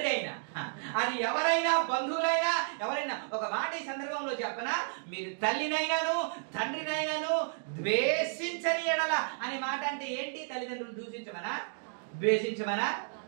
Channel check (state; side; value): silent; left; digital silence